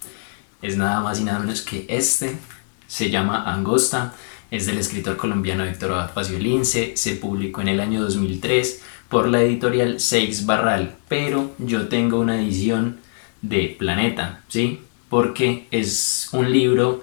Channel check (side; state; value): right; silent; 64 dB below the other